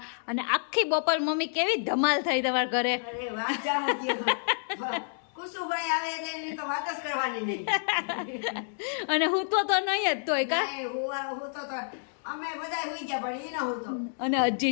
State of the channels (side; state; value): right; silent; digital silence